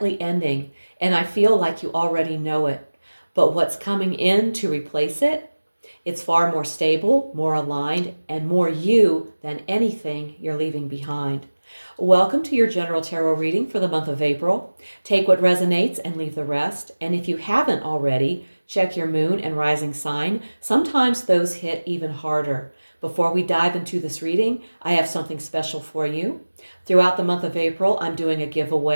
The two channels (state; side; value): inverted; both; correlation -1.00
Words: ending, and I feel like you already know it. But what's coming in to replace it? It's far more stable, more aligned, and more you than anything you're leaving behind. Welcome to your general tarot reading for the month of April. Take what resonates and leave the rest. And if you haven't already, check your moon and rising sign. Sometimes those hit even harder. Before we dive into this reading, I have something special for you. Throughout the month of April, I'm doing a